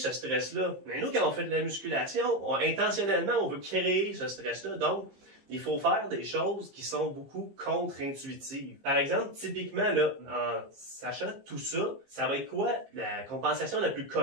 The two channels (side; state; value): left; late; 15 ms